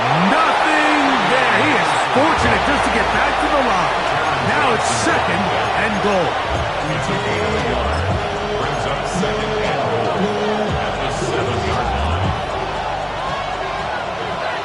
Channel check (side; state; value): right; noise; rumble, 24 dB below the sound